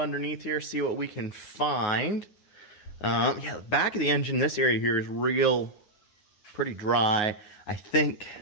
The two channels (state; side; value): late; right; 9.5 ms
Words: here, see what we can find. Yeah, the back of the engine, this area here is pretty dry. I think,